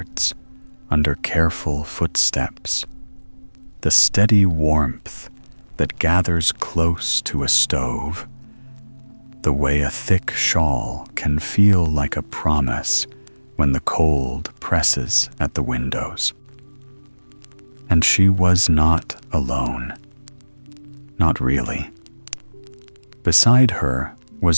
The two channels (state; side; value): inverted; both; correlation -1.00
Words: under careful footsteps, the steady warmth that gathers close to a stove, the way a thick shawl can feel like a promise when the cold presses at the windows. And she was not alone. Not really. Beside her